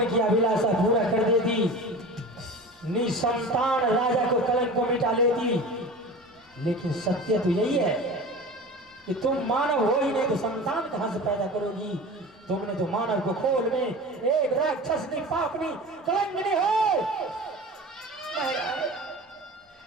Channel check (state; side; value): normal; both; correlation 0.34